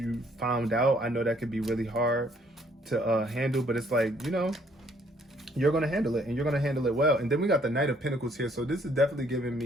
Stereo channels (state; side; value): normal; both; correlation 0.64